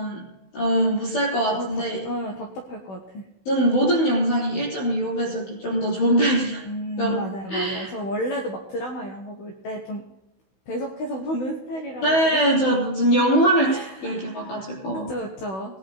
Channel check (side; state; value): right; late; 16 ms